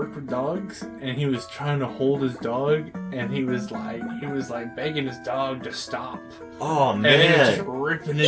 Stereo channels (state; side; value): identical; both; correlation 1.00